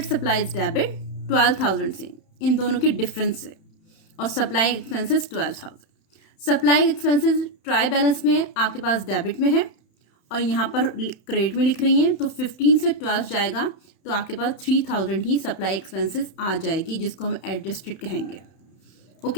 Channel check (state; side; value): late; right; 31 ms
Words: सप्लाईज डेबिट 12,000 से, इन दोनों के डिफरेंस से, और supply expenses 12,000। Supply expenses try balance में आपके पास डेबिट में है और यहाँ पर क्रेडिट में लिख रही हैं, तो 15 से 12 जाएगा तो आपके पास 3,000 ही सप्लाई एक्सपेंसेस आ जाएगी, जिसको हम एडजस्टेड कहेंगे।